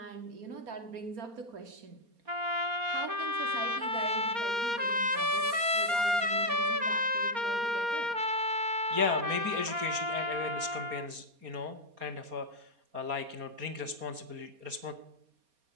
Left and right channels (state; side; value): late; left; 4.2 ms